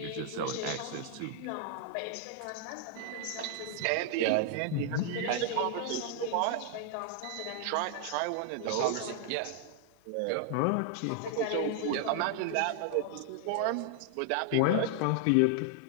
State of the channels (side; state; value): both; different; correlation 0.00